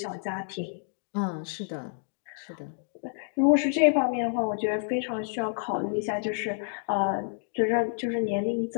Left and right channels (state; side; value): silent; right; digital silence